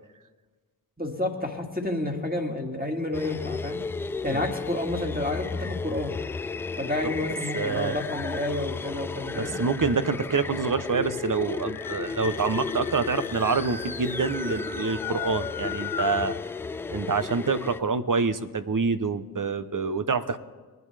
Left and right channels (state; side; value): normal; both; correlation 0.06